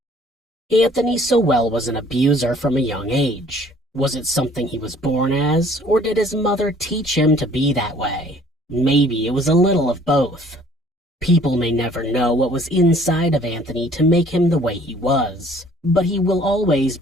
Anthony Sowell was an abuser from a young age. Was it something he was born as, or did his mother teach him to be that way? Maybe it was a little of both. People may never know what was inside of Anthony to make him the way he was, but he will always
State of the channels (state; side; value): normal; both; correlation 0.56